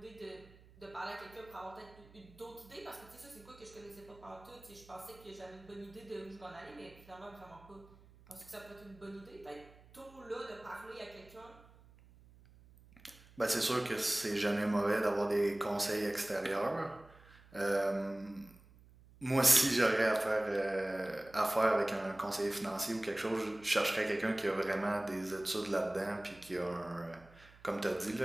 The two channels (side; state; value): right; noise; hum, 24 dB below the sound